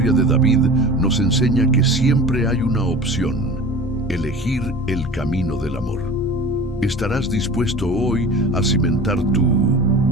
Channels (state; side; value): normal; both; correlation 0.38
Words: de David nos enseña que siempre hay una opción: elegir el camino del amor. ¿Estarás dispuesto hoy a cimentar tu